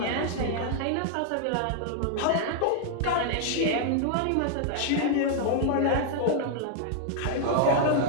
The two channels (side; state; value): both; different; correlation 0.00